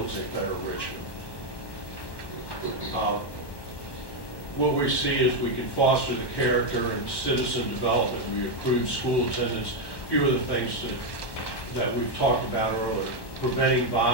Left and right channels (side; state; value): right; late; 1.1 ms